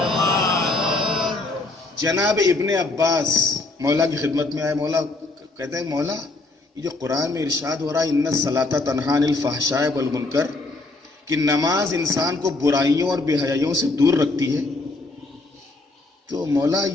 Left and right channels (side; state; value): right; quieter; 3.2 dB